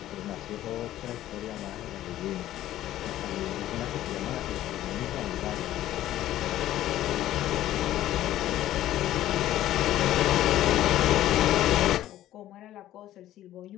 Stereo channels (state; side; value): quieter; right; 13.5 dB